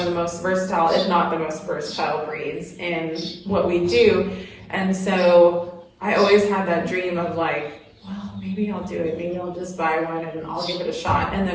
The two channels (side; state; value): both; identical; correlation 1.00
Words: the most versatile, if not the most versatile breeds in what we do. And so I always had that dream of like, well, maybe I'll do it. Maybe I'll just buy one and I'll give it a shot. And